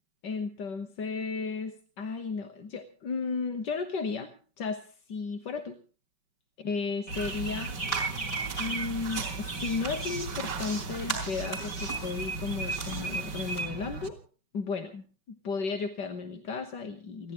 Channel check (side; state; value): right; late; 5.3 ms